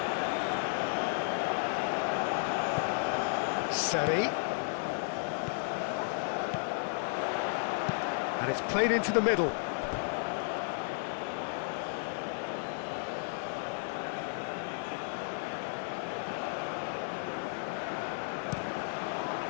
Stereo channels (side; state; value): right; silent; 55 dB below the other